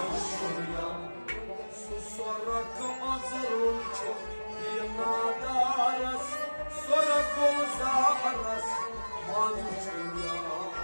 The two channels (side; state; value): both; inverted; correlation -1.00